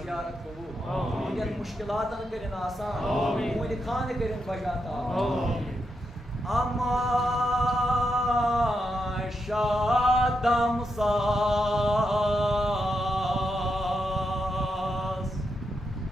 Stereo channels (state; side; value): normal; both; correlation 0.84